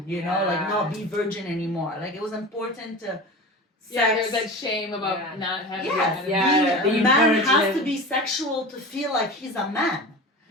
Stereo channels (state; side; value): normal; both; correlation 0.32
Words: you know, like not be virgin anymore. Like it was important to Yeah, sex. there's that shame about Yeah. not having. Yes, that yeah, a being man has virgin. to be sexual to feel like he's a man.